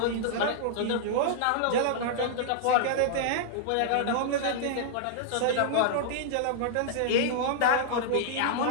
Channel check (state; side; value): different; both; correlation -0.01